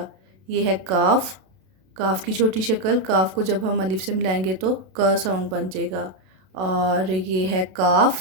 ये है काफ की छोटी शक्ल। काफ को जब हम अलिफ से मिलाएंगे तो क साउंड बन जाएगा। और ये है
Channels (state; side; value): late; left; 32 ms